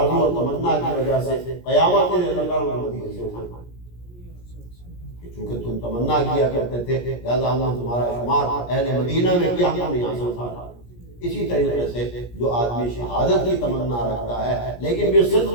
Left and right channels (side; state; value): right; late; 17 ms